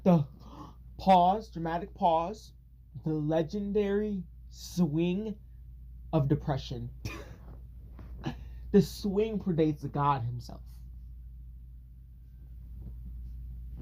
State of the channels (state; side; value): identical; both; correlation 1.00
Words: the dramatic pause, the legendary swing of depression. The swing predates the god himself.